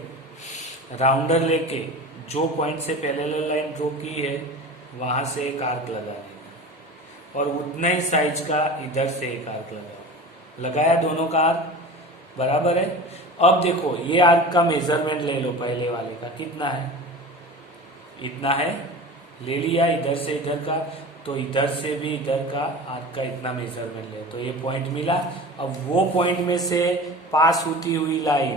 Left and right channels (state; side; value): normal; both; correlation 0.34